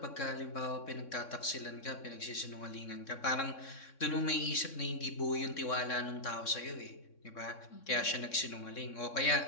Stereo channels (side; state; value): right; late; 3.6 ms